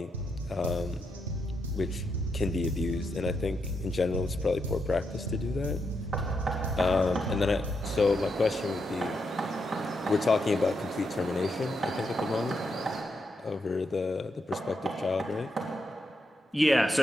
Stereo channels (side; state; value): both; normal; correlation 0.82